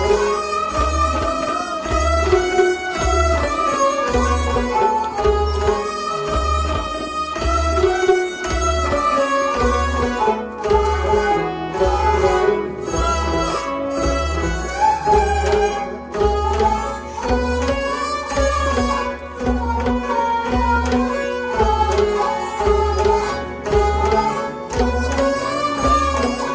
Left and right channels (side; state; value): both; identical; correlation 1.00